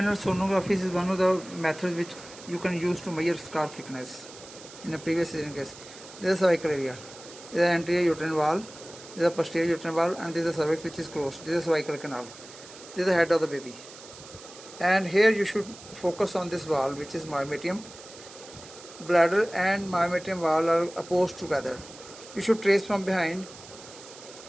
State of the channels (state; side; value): noise; right; hiss, 17 dB below the sound